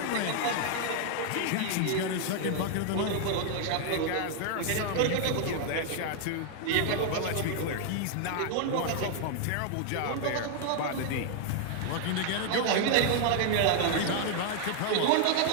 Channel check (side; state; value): both; different; correlation 0.00